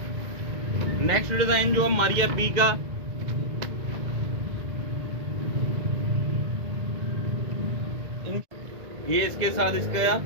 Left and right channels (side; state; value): left; late; 2.0 ms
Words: नेक्स्ट डिजाइन जो है मारिया बी का, ये इसके साथ